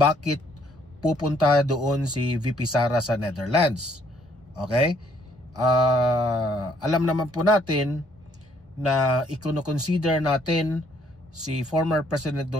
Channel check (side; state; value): both; normal; correlation 0.66